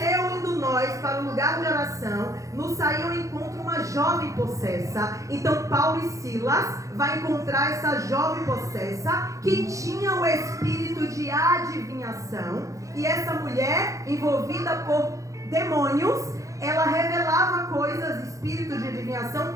indo nós para o lugar de oração, nos saiu ao encontro uma jovem possessa. Então Paulo e Silas vai encontrar essa jovem possessa que tinha o espírito de adivinhação, e essa mulher envolvida por demônios, ela revelava coisas, espírito de adivinhação,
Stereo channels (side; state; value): left; late; 0.16 ms